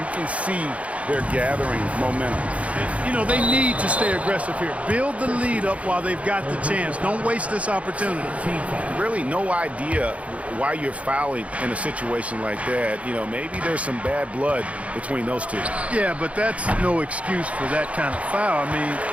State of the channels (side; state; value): left; late; 0.065 ms